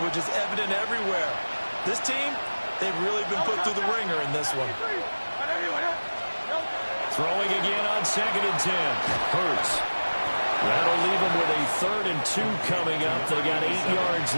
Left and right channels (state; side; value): inverted; both; correlation -1.00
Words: is evident everywhere. This team, they've really been put through the ringer in this one. Throwing again on 2nd and 10. Hurts. That'll leave them with a 3rd and 2 coming up. They got 8 yards